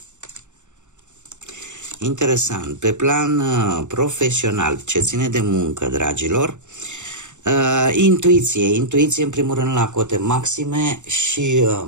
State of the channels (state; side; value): late; left; 0.85 ms